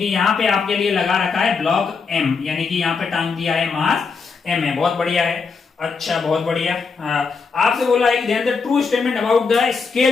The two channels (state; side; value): quieter; right; 5.0 dB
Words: यहाँ पे आपके लिए लगा रखा है ब्लॉक m, यानी कि यहाँ पे टांग दिया है मास m है। बहुत बढ़िया है, अच्छा बहुत बढ़िया। आपसे बोला है कि then the true statement about the